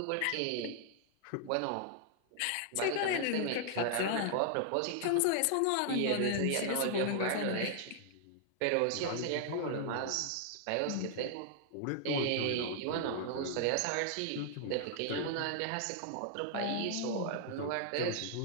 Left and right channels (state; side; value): different; both; correlation 0.00